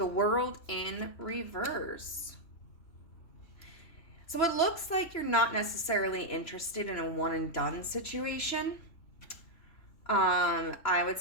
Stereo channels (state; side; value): late; right; 3.0 ms